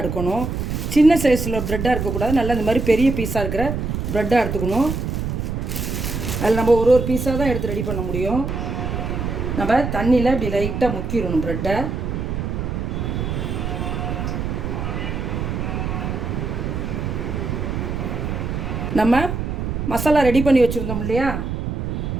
எடுக்கணும், சின்ன சைஸில் ப்ரெட்டாக இருக்கக்கூடாது. நல்லா இந்த மாதிரி பெரிய பீஸாக இருக்கிற ப்ரெட்டாக எடுத்துக்கணும். அதில் நம்ம ஒரு பீஸாக தான் எடுத்து ரெடி பண்ண முடியும். நம்ம தண்ணியில் இப்படி லைட்டாக முக்கிடணும் ப்ரெட்டை. நம்ம மசாலா ரெடி பண்ணி வச்சுருந்தோம் இல்லையா,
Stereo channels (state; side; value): noise; right; rumble, 3 dB below the sound